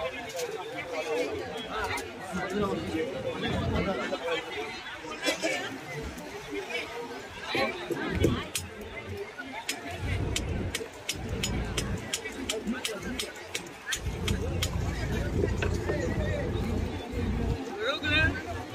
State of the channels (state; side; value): identical; both; correlation 1.00